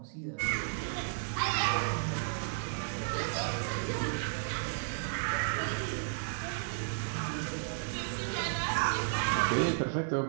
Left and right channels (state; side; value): silent; left; digital silence